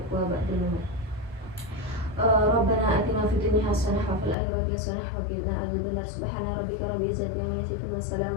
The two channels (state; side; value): drops out; right; at 4.4 s